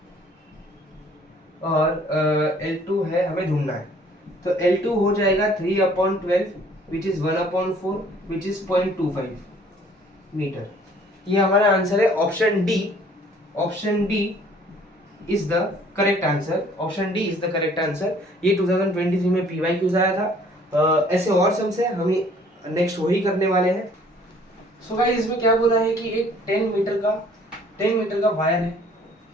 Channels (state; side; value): normal; both; correlation 0.57